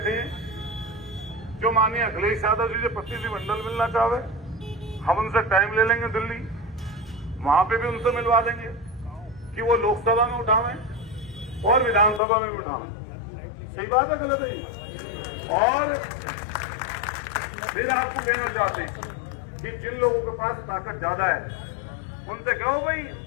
हैं जो माननीय अखिलेश यादव जी से प्रतिनिधिमंडल मिलना चाहे, हम उनसे टाइम ले लेंगे दिल्ली, वहां पे भी उनसे मिलवा देंगे कि वो लोकसभा में उठावें और विधानसभा में भी उठावें। सही बात है गलत है? और फिर आपको कहना चाहते हैं कि जिन लोगों के पास ताकत ज्यादा है उनसे कहो भाई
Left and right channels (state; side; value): drops out; right; at 12.2 s